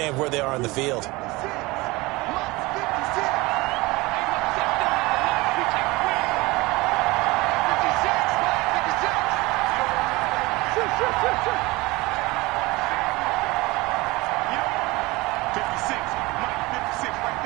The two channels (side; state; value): left; quieter; 22.2 dB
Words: where they are on the field?